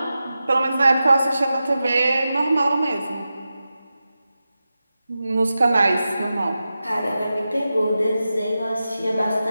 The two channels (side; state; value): both; inverted; correlation -0.92